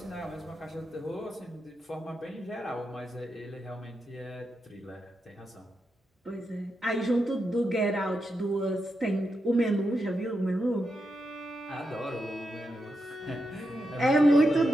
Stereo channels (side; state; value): both; normal; correlation 0.86